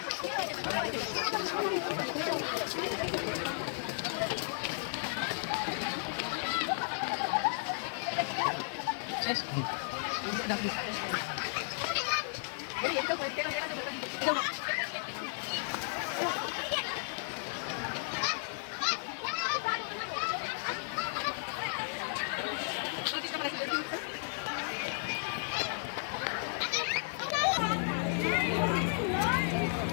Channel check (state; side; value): silent; right; digital silence